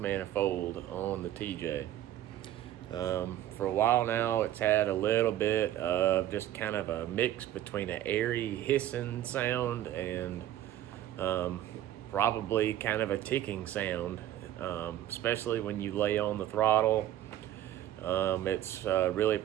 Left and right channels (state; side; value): quieter; left; 12.7 dB